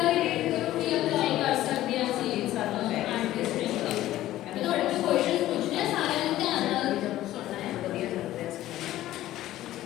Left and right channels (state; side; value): quieter; right; 14.5 dB